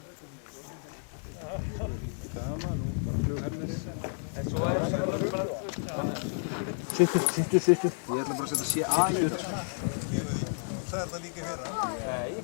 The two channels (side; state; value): right; silent; 57 dB below the other